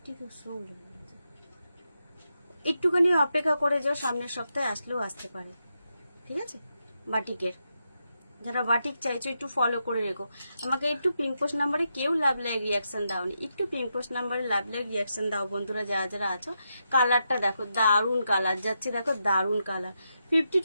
খুব স্লো। একটুখানি অপেক্ষা করে যাও, সামনের সপ্তাহে আসলেও আসতে পারে, ঠিক আছে। বাটিকের যারা বাটিক চাইছো একটু ফলো করে রেখো। আমাকে একটু পিঙ্ক পোস্ট নাম্বারে কেউ লাভ লাইক রিয়াকশন দাওনি, একটু পিঙ্ক পোস্ট নাম্বারে লাভ লাইক রিয়াকশন দাও বন্ধুরা, যারা যারা আছো। কালারটা দেখো, দারুণ কালার যাচ্ছে, দেখো দারুণ কালার।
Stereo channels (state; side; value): inverted; both; correlation -0.85